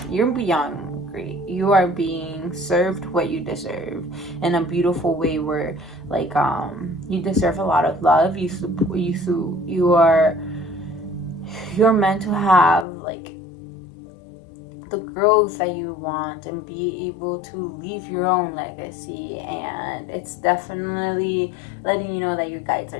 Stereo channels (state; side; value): drops out; right; at 12.9 s